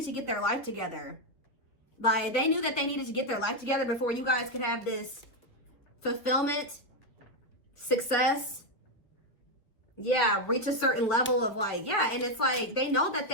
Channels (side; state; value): right; late; 3.8 ms